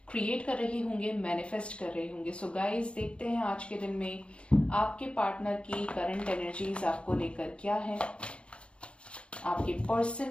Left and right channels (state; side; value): late; right; 0.058 ms